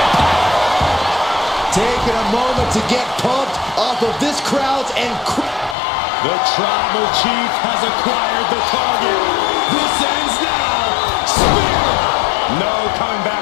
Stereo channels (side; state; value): right; drops out; at 5.8 s